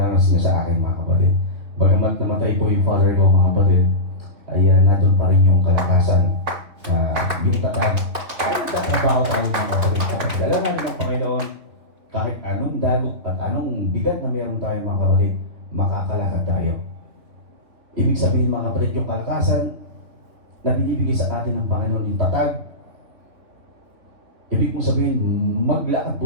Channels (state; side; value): late; left; 3.3 ms